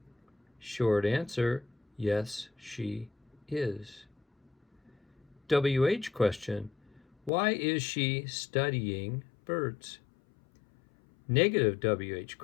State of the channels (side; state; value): right; drops out; at 7.3 s